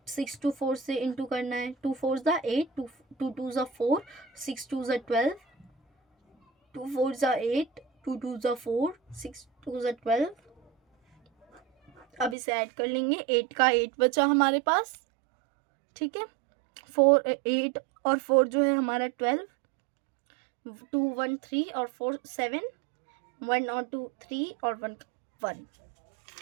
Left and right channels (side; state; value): left; drops out; at 12.4 s